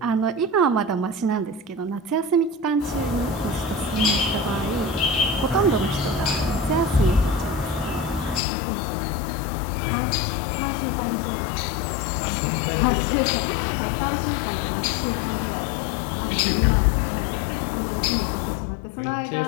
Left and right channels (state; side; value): drops out; right; at 8.4 s